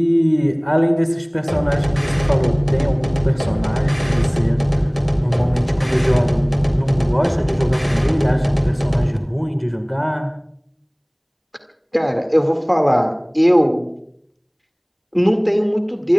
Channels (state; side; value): identical; both; correlation 1.00